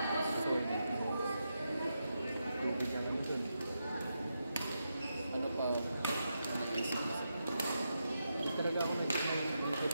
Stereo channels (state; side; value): inverted; both; correlation -0.86